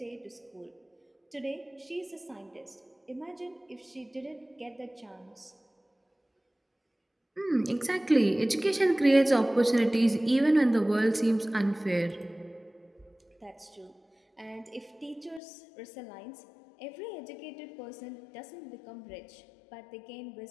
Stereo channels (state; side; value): drops out; right; at 15.4 s